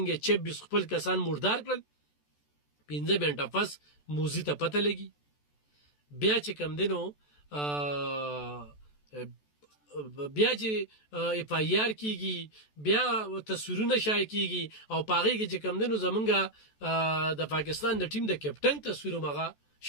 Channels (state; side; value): late; right; 14 ms